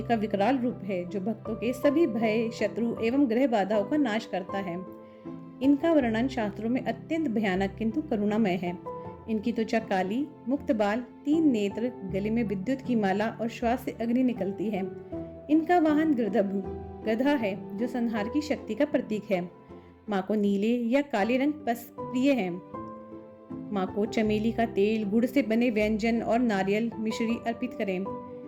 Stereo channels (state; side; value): identical; both; correlation 1.00